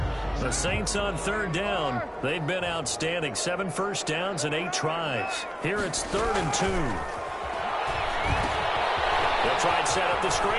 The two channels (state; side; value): identical; both; correlation 1.00